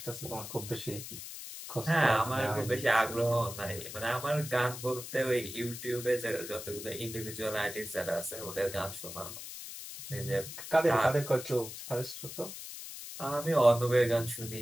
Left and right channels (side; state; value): left; noise; hiss, 10 dB below the sound